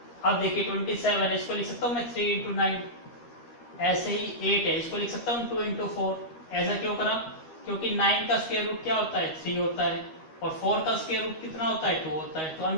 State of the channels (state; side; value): late; right; 13 ms